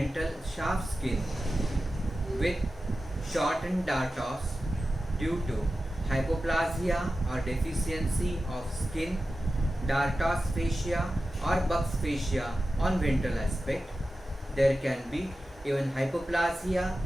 shaft skin with shortened dartos due to hypoplasia or deficiency of skin, dartos fascia or Buck's fascia on ventral aspect. There can be even hypoplasia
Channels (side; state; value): both; normal; correlation 0.93